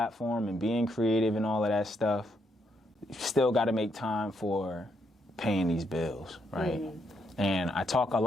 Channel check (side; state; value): both; normal; correlation 0.76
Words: and being creative and all of that stuff, you still got to make time for paying these bills, right? Mm-hmm. And I talk a